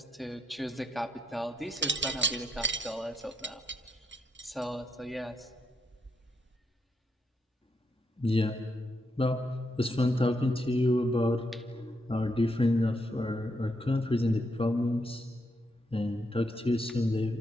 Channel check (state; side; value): normal; both; correlation 0.79